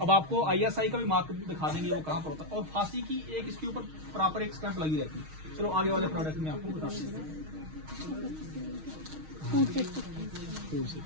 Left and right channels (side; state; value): left; late; 6.4 ms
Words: आपको ISI का भी मार्क दिखा देंगे वो कहाँ पर होता है। और फांसी की एक इसके ऊपर प्रॉपर एक स्टैंप लगी रहती है। चलो आगे वाले प्रोडक्ट में आपको बता देते हैं।